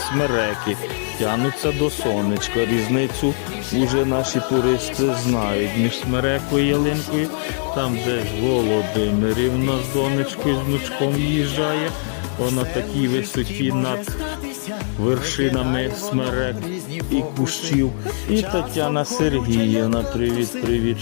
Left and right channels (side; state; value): right; silent; 65 dB below the other